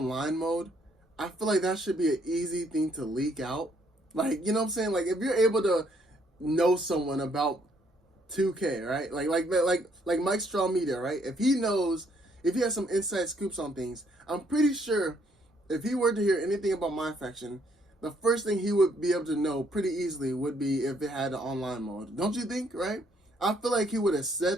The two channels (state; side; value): normal; both; correlation 0.68